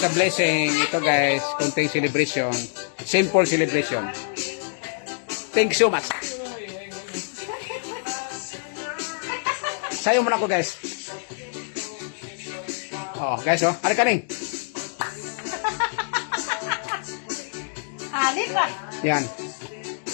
blessing. Ito guys, konting celebration. Simple celebration. Thank you so much. Sayo muna ako guys. Oh, guys oh. Ano ka rin? Halip ba? Yan.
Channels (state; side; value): silent; right; digital silence